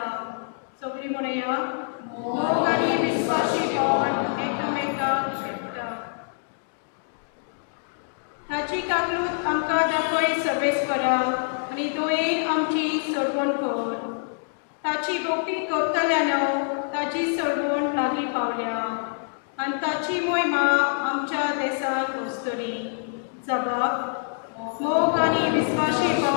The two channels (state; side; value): silent; right; digital silence